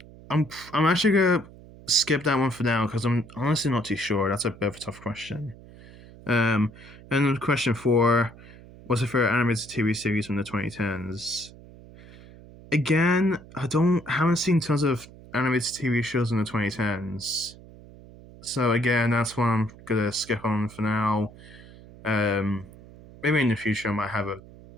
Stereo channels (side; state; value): right; noise; hum, 20 dB below the sound